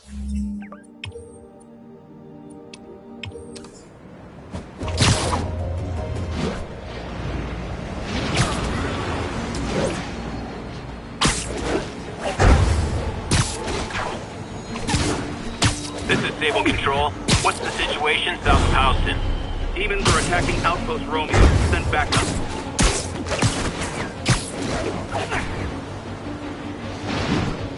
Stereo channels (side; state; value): both; identical; correlation 1.00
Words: This is Sable Control. What's the situation south of Houston? Demons are attacking Outpost Romeo. Send backup.